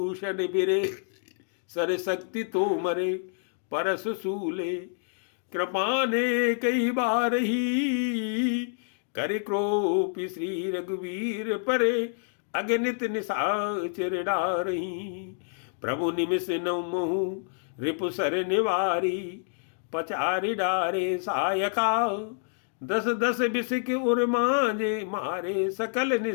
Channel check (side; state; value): right; silent; digital silence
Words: बिरे, सर शक्ति तो मरे परस सूले कृपाने कई बार ही, कर क्रोपी श्री रघुवीर परे अगणित निशाचर डारही, प्रभु निमिष नौ महु रिपु सर निवारी, पचारि डारे सायका, दस दस बिसिक उर मांजे मारे सकल